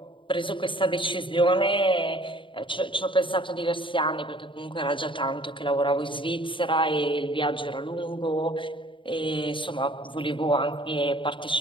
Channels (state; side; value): late; right; 0.24 ms